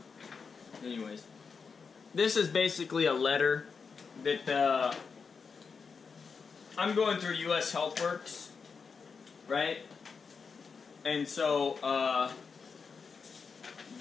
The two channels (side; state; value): right; quieter; 5.4 dB